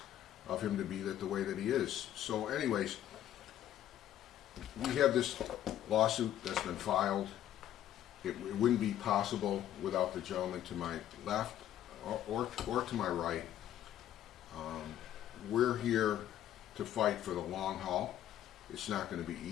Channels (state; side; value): quieter; right; 11.7 dB